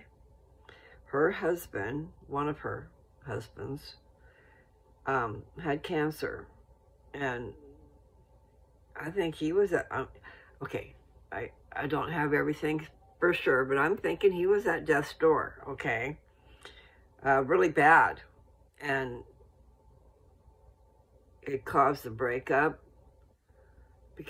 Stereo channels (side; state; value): both; identical; correlation 1.00